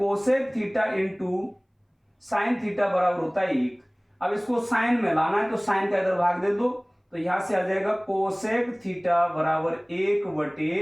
theta into sine theta बराबर होता है 1। अब इसको साइन में लाना है तो साइन का इधर भाग दे दो, तो यहां से आ जाएगा कोसेक थीटा बराबर 1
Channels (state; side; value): identical; both; correlation 1.00